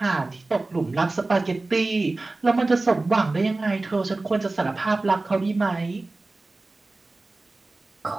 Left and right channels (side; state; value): left; quieter; 3.2 dB